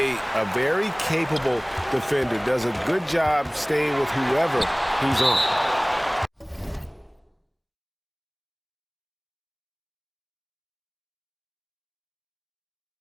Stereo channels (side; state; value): both; identical; correlation 1.00